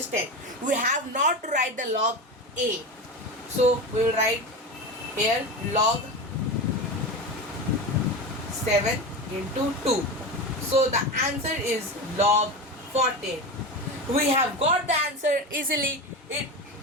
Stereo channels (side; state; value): both; normal; correlation 0.24